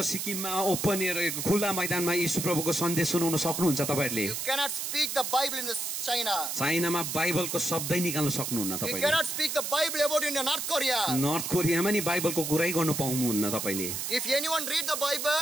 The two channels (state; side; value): noise; right; hiss, 3 dB below the sound